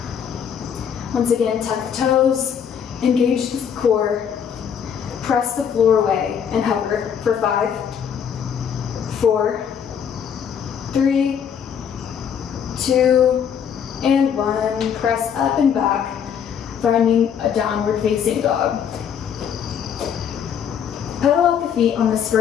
Once again, tuck the toes, engage the core, press the floor away, and hover for 5, 4, 3, 2, and 1. Press up and back, finding a downward facing dog. Pedal out the feet on this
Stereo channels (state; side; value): quieter; right; 8.0 dB